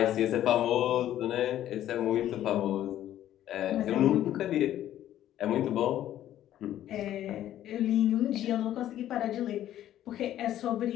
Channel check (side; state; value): right; quieter; 12.2 dB